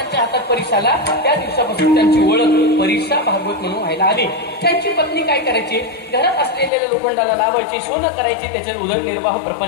हातात परीस आला त्या दिवसापासून त्यांची ओळख परीसा भागवत म्हणून व्हायला आली. त्यांची पत्नी काय करायची, घरात असलेल्या लोखंडाला लावायची, सोनं करायची, त्याच्यात उदरनिर्वाह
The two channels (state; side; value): drops out; right; at 6.7 s